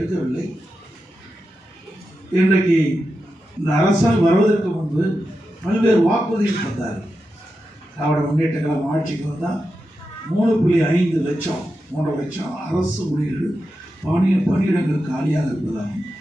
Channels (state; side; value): normal; both; correlation 0.89